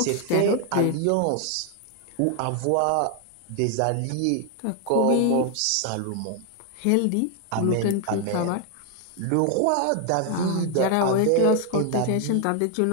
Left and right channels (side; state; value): both; different; correlation 0.00